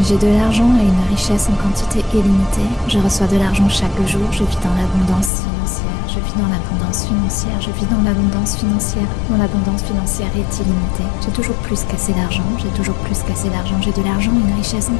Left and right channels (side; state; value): right; drops out; at 5.3 s